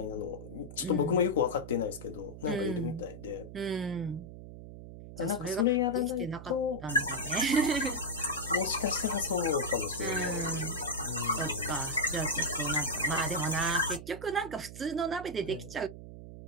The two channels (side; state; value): right; noise; hum, 13 dB below the sound